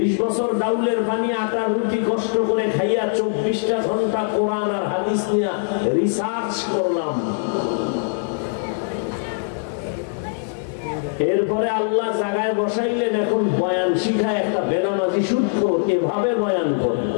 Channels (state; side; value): silent; right; 64 dB below the other